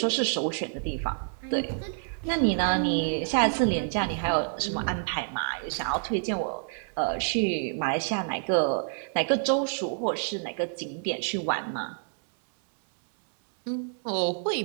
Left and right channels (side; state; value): left; silent; 59 dB below the other